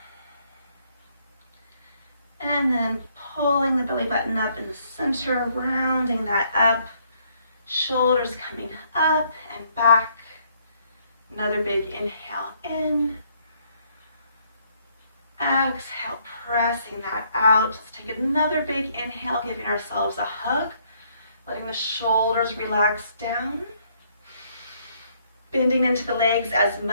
And then pulling the belly button up in the center, rounding that up. Shoulders coming up and back. Another big inhale in. Exhale, pressing that out. Let's take another big inhale, giving ourselves a hug. Letting the shoulders relax down. Bending into the legs as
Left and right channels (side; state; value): both; inverted; correlation -0.68